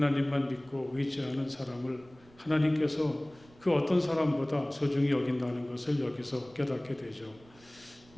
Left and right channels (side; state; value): right; noise; rumble, 26 dB below the sound